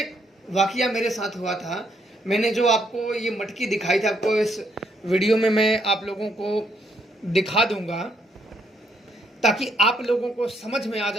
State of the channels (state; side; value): normal; both; correlation 0.72